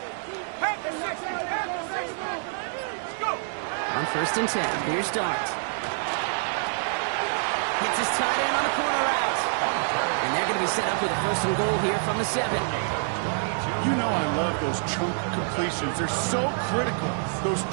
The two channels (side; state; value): left; silent; digital silence